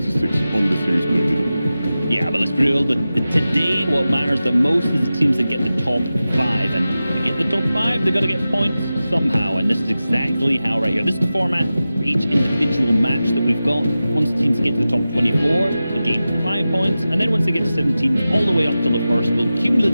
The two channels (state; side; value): inverted; both; correlation -0.94